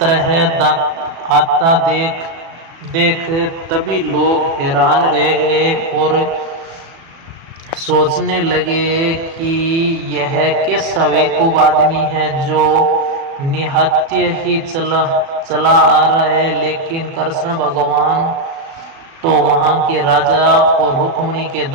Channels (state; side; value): late; left; 36 ms